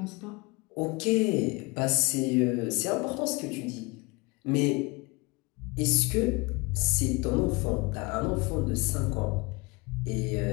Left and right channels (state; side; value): quieter; right; 26.2 dB